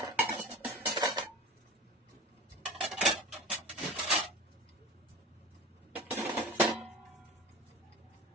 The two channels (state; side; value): normal; both; correlation 0.34